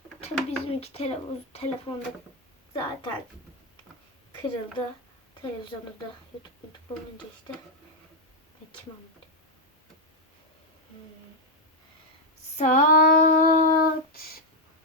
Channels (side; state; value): both; normal; correlation 0.01